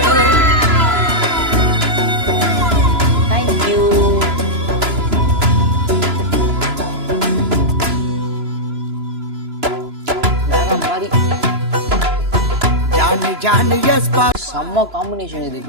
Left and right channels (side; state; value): left; late; 3.0 ms